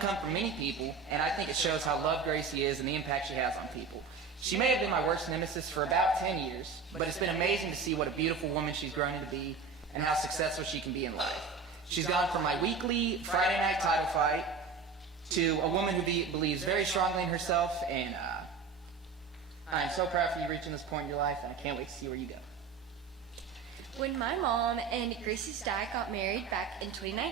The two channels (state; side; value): quieter; left; 5.3 dB